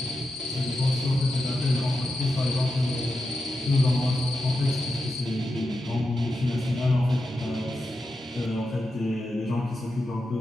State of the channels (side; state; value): both; normal; correlation 0.89